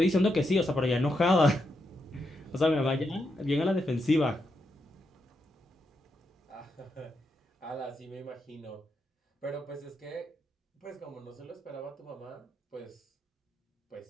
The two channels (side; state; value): both; normal; correlation 0.83